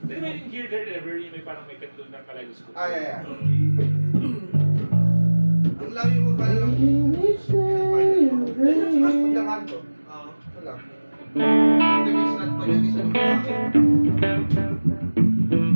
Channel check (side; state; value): both; inverted; correlation -1.00